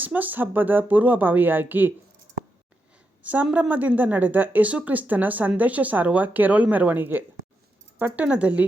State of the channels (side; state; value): both; normal; correlation 0.85